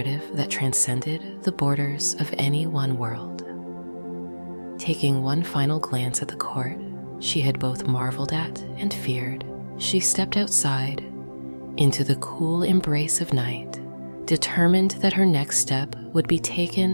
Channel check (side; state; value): both; inverted; correlation -1.00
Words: that transcended the borders of any one world. Taking one final glance at the court she had both marveled at and feared, she stepped outside into the cool embrace of night, determined that her next step would be